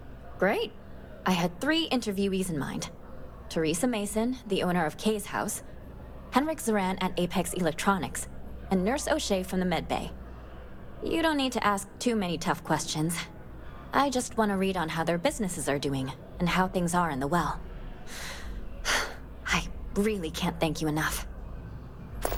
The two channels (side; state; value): both; identical; correlation 1.00